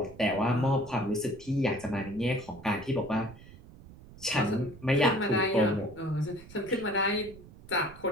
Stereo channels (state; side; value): noise; right; rumble, 19 dB below the sound